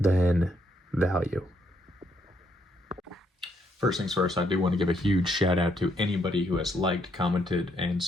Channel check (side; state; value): both; normal; correlation 0.74